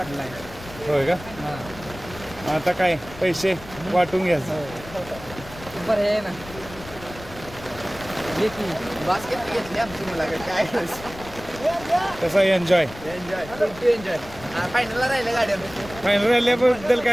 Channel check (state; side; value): noise; left; rumble, 16 dB below the sound